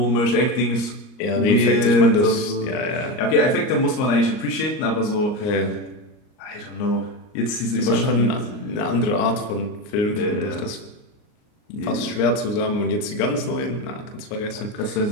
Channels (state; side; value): late; right; 38 ms